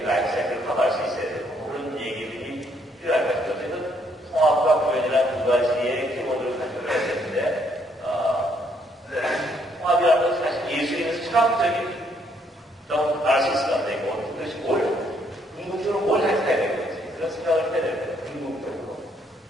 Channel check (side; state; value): both; normal; correlation 0.70